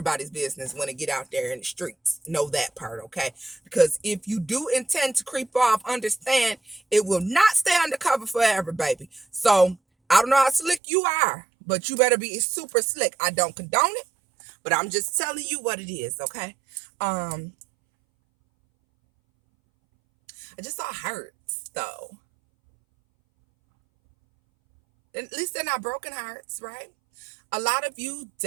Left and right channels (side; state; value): left; drops out; at 10.8 s